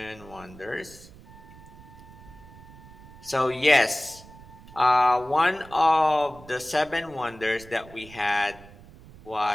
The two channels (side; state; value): right; noise; rumble, 20 dB below the sound